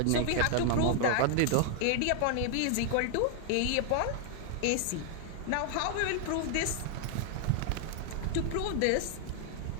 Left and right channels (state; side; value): different; both; correlation 0.00